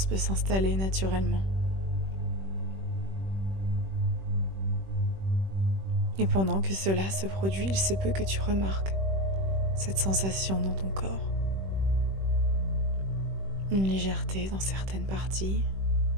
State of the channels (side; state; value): left; late; 21 ms